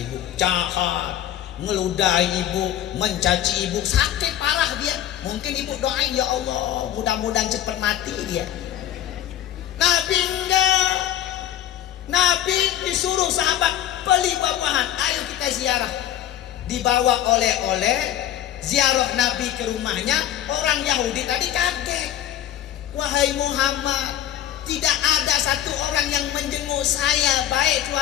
jahat, ngeludahi ibu, mencaci ibu, sakit parah dia. Mungkin ibu doain, ya Allah mudah-mudahan cepat mati dia. Nabi enggak. Nabi disuruh sahabat beli buah-buahan, ayo kita ziarah. Dibawa oleh-oleh, ziarah Nabi ke rumahnya. Orang Yahudi tadi kaget. Wahai Muhammad, tidak ada satu orang yang menjenguk saya, baik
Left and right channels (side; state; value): right; quieter; 11.7 dB